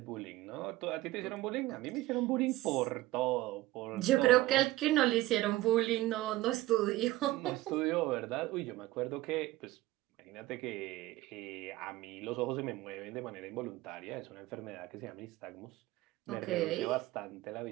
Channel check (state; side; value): quieter; left; 17.6 dB